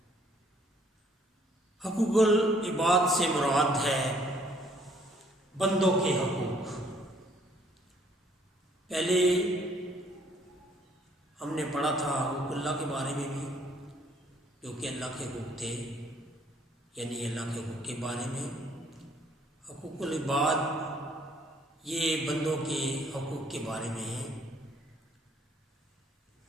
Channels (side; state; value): both; normal; correlation 0.63